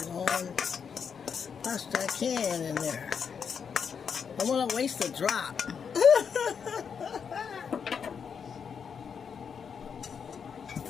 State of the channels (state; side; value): quieter; right; 6.7 dB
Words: all pasta I can in there. I want to waste a drop.